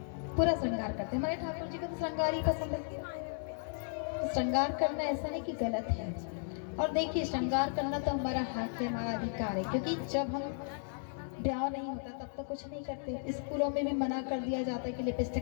पूरा श्रृंगार करते हैं। हमारे ठाकुर जी को तो श्रृंगार ही पसंद है। तो श्रृंगार करना ऐसा नहीं कि गलत है। और देखिए श्रृंगार करना तो हमारा हक है, हमारा अधिकार है। क्योंकि जब हम ब्याह नहीं होता तब तो कुछ नहीं करते। स्कूलों में भी मना कर दिया जाता है कि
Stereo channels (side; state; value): right; silent; 54 dB below the other